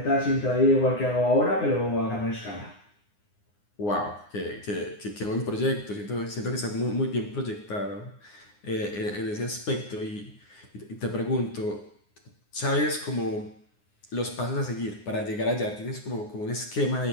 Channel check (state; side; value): late; right; 9.7 ms